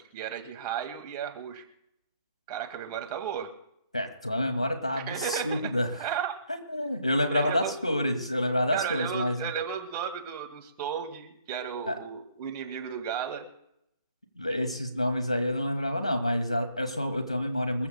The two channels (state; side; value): inverted; both; correlation -0.68